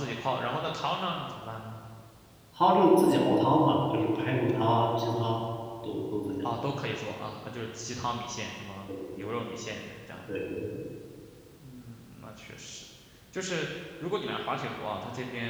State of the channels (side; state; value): both; identical; correlation 1.00